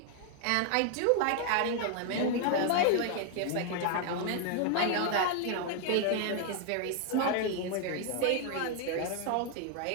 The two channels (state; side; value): different; both; correlation 0.00